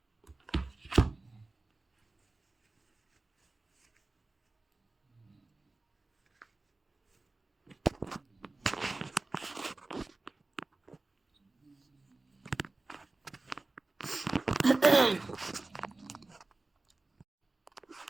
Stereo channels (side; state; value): left; quieter; 3.2 dB